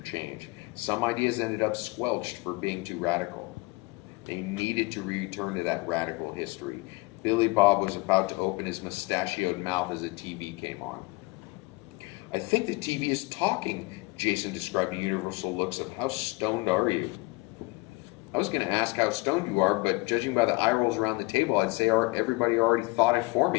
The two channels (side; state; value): right; quieter; 25.2 dB